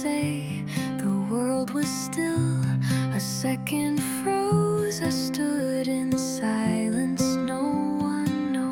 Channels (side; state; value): both; identical; correlation 1.00